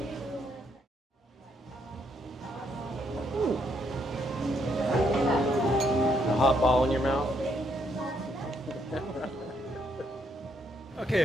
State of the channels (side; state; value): both; normal; correlation 0.73